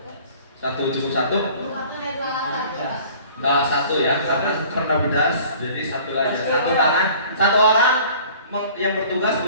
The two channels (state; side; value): inverted; both; correlation -0.49